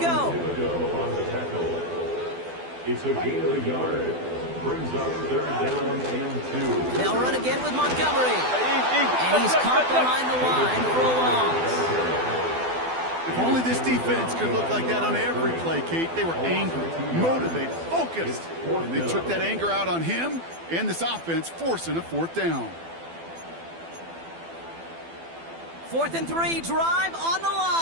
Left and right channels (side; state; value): left; late; 12 ms